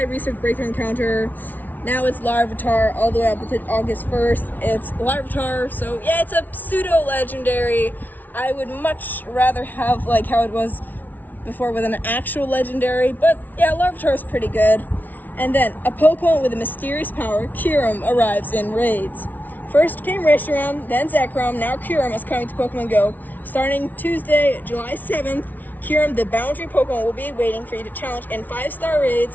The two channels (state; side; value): late; right; 0.082 ms